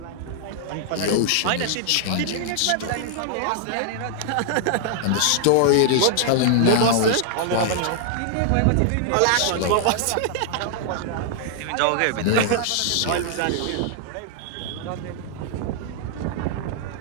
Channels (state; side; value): different; both; correlation 0.00